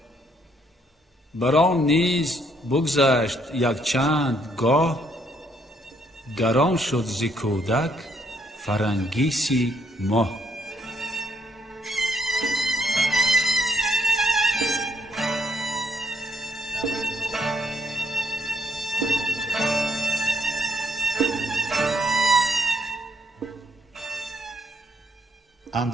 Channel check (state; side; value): normal; both; correlation 0.70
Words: بران نیز بگذشت یک چند گاه، گران شد ز کودک فرنگیسی ماه.